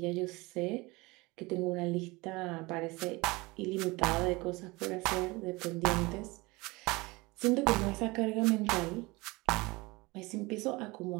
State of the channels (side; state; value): left; quieter; 23.4 dB